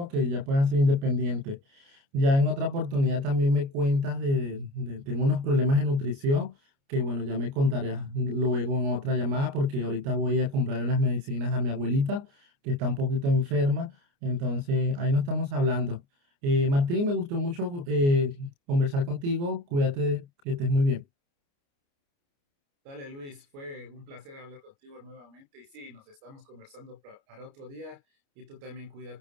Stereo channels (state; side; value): late; left; 29 ms